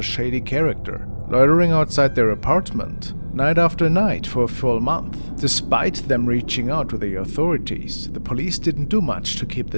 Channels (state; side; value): inverted; both; correlation -1.00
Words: shady character loitering outside their apartment night after night for a full month. Despite them reaching out to the authorities, the police didn't do much to keep